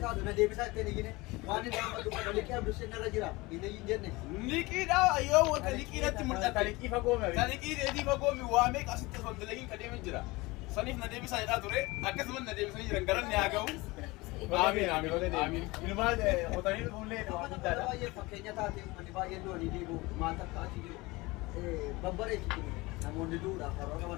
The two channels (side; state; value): right; quieter; 22.6 dB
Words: taatu na deebisaa ittiin iyyine waan inni amma dubbata liqii abdusheen irra jira inni hin jenne liqiidha yoo wanta liqiidhatti mul'ata taliqii fagoome taliqii deebii fagoomi waa meeqa asitti osoo dalagiin ka deemin jira saniif na deebisaa jedhaa ture akkasumas na deebisanii jiran garanni haa ga'u amiin ilmaan qotanii dhufuullee waa guddaadha baay'ee fakkeenya taate uummanni baay'een du'anii deebi'u maata akka achi jiru babbareechitu namoonni du'uudhaaf karoora